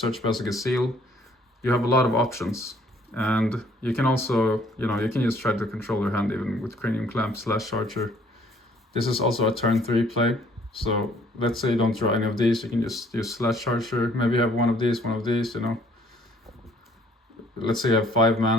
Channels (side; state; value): both; normal; correlation 0.61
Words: Balesk Baj. You have a lot of options. And you can also, you know, you can just try to control your hand even with Cranium Clamp, Slash Charger. This is also a turn 3 play. So let's say you don't draw any of these, you can just use Slash Charger. Maybe you have one of these, you know. Let's say you have 5